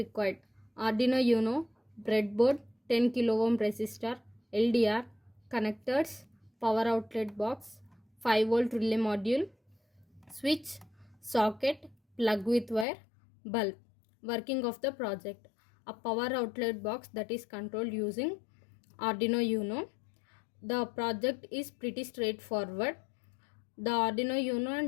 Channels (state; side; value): drops out; right; at 12.9 s